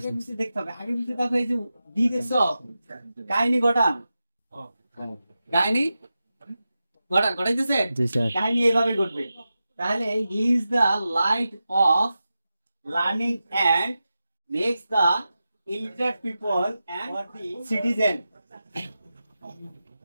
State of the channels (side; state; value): both; inverted; correlation -0.92